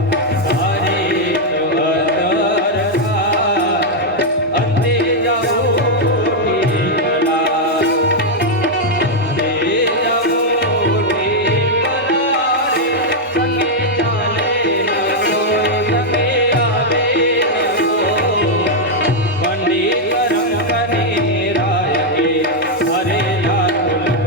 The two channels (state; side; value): normal; both; correlation -0.02